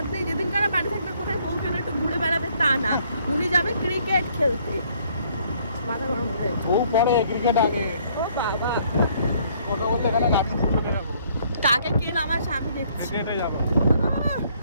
নেই যেদিনকার বাড়ি থাকবে কোথায় বউকে একটু ঘুরে বেড়াবে তা না উনি যাবে ক্রিকেট খেলতে মাথা গরম হয়ে যাচ্ছে ও পরে ক্রিকেট আগে ও বাবা কথা বলতে এখানে রাখি ক্রিকেটে যাবো। কাকে কে আমার স্বামী দেখছি ক্রিকেটে যাবো।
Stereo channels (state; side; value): inverted; both; correlation -0.64